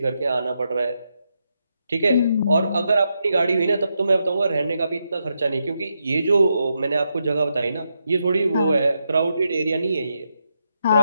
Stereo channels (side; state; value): both; inverted; correlation -0.83